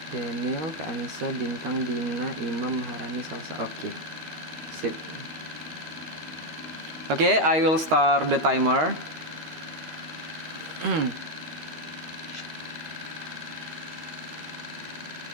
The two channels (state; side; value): late; left; 12 ms